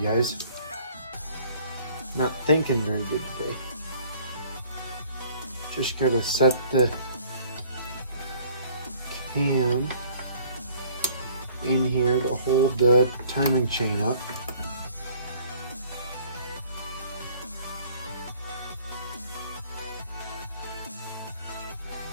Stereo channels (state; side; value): inverted; both; correlation -0.55